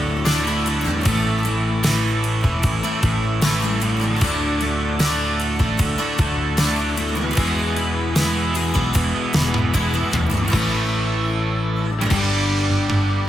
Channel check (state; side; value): normal; both; correlation 0.87